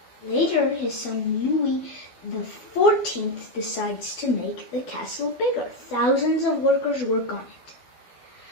Later, his son Louis XIV decides to make the castle bigger. Thousands of workers work on it.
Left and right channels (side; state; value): right; late; 12 ms